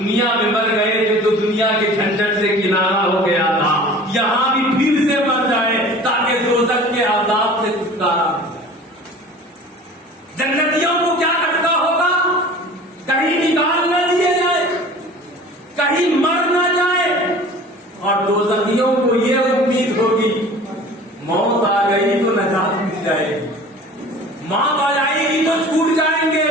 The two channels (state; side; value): normal; both; correlation 0.43